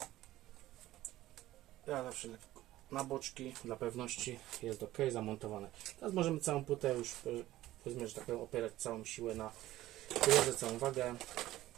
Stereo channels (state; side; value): quieter; left; 15.4 dB